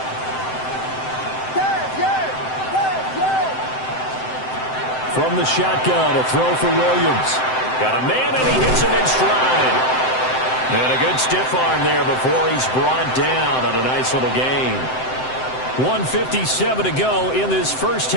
From the shotgun, a throw for Williams. Got a man, and he hits him in stride. And a good stiff arm there before he's brought down on a nice little gain. 1:57 to go in this first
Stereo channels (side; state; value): right; late; 7.8 ms